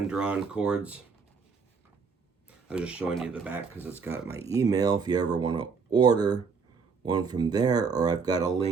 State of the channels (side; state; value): left; quieter; 5.3 dB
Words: chords. I was just showing you the back because it's got my email if you ever want to order one from there, or I've got a